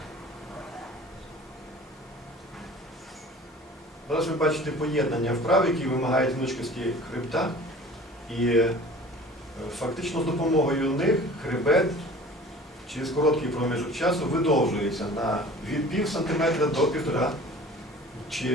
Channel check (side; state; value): both; normal; correlation 0.44